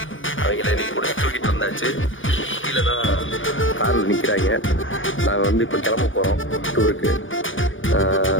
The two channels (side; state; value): right; late; 0.57 ms